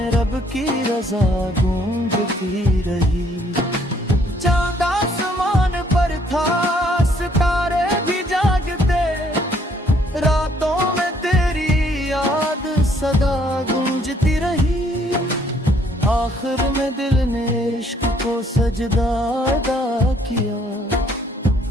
रब की रजा गूंजती रही। चांद आसमान पर था, सितारे भी जागते, रातों में तेरी याद सदा गूंजती रही। आखिर में दिल ने इश्क को सजदा अदा किया,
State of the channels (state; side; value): normal; both; correlation 0.65